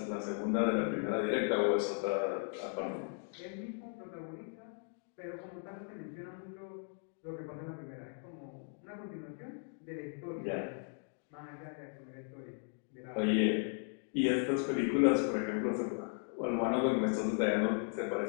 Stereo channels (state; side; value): silent; right; 53 dB below the other